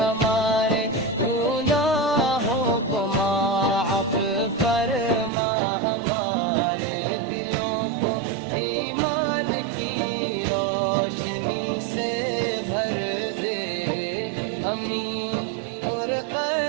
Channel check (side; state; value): left; drops out; at 5.3 s